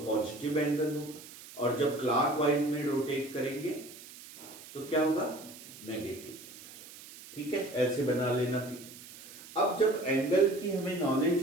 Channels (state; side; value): noise; right; hiss, 17 dB below the sound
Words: एंगल होगा, और जब क्लॉकवाइज में रोटेट करेंगे तो क्या होगा? Negative angle. ठीक है, ऐसे बना लेना भी। अब जब एंगल की हमें नॉलेज